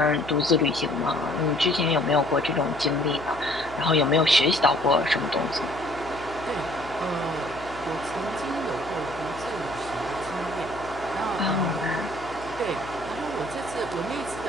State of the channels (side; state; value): left; noise; hum, 17 dB below the sound